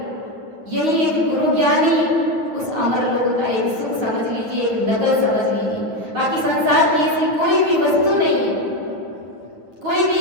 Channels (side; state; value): left; late; 9.6 ms